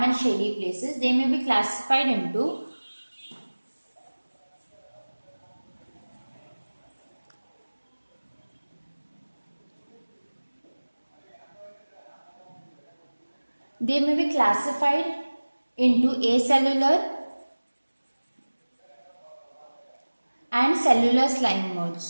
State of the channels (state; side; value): inverted; both; correlation -1.00